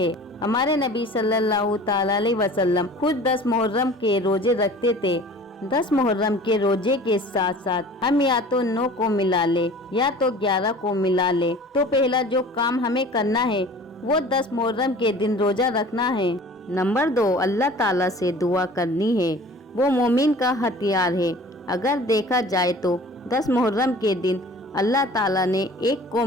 ہمارے نبی صلی اللہ تعالی علیہ وسلم خود 10 محرم کے روزے رکھتے تھے۔ 10 محرم کے روزے کے ساتھ ساتھ ہم یا تو 9 کو ملا لے یا تو 11 کو ملا لے تو پہلا جو کام ہمیں کرنا ہے وہ 10 محرم کے دن روزہ رکھنا ہے۔ نمبر 2، اللہ تعالیٰ سے دعا کرنی ہے، وہ مومن کا ہتھیار ہے۔ اگر دیکھا جائے تو 10 محرم کے دن اللہ تعالیٰ نے ایک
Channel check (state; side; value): normal; both; correlation 0.44